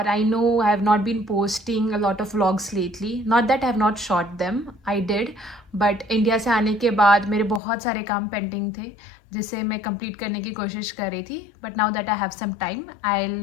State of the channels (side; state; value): right; drops out; at 7.6 s